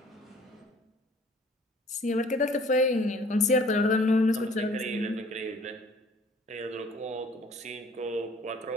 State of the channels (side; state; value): both; normal; correlation 0.54